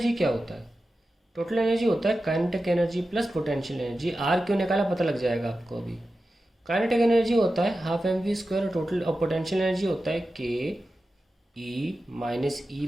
क्या होता है, total energy होता है kinetic energy plus potential energy. R क्यों निकाला पता लग जाएगा आपको. अभी काइनेटिक एनर्जी होता है हाफ mv², और टोटल और पोटेंशियल एनर्जी होता है ke -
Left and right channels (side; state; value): both; normal; correlation 0.93